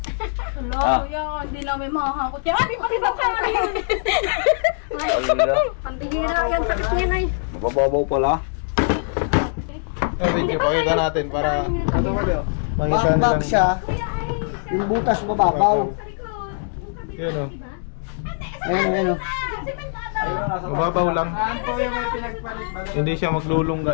Hello, Ah. kuya. Hindi namin makakakot yan. Ay, pati ba ka yun? Alala. Ang bihira yan, sakit niya na eh. Mababaw pala. Video, pakita natin para Ito ba daw? makita Back nilang. siya. Yung butas mababaw. Yun o. Ayun o. Mababaw lang. Saan po yung may pinagpalit? Hindi siya maglulungga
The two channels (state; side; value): silent; right; digital silence